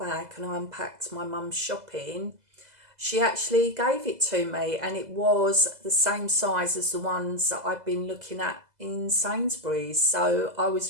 and I unpacked my mum's shopping, she actually gave it to me, and it was the same size as the ones that I've been looking at in Sainsbury's. So I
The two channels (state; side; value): late; left; 2.0 ms